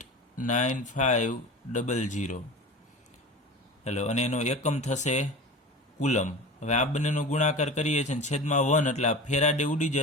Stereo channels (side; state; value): both; normal; correlation 0.33